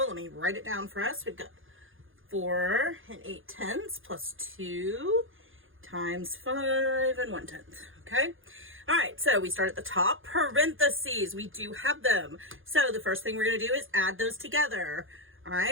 let me write it down for us. We've got 4 8/10 plus 2 times 5 1/10. Okay. All right. So we start at the top. Parentheses. We do have them. So the first thing we're going to do is add those together. All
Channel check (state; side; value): late; left; 0.58 ms